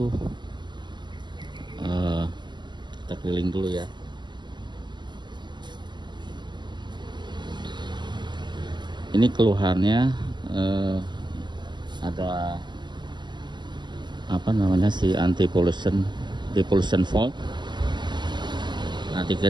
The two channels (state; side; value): late; left; 0.21 ms